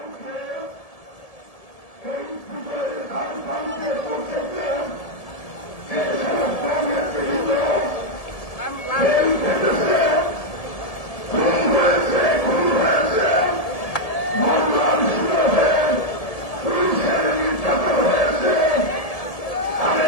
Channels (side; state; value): right; late; 1.7 ms